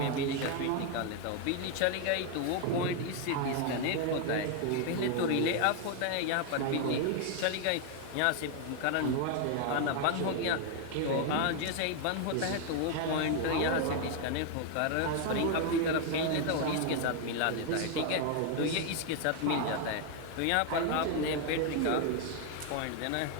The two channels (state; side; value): different; both; correlation 0.01